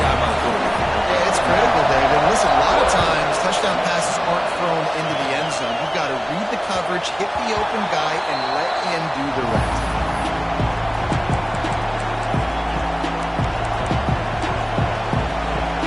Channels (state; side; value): identical; both; correlation 1.00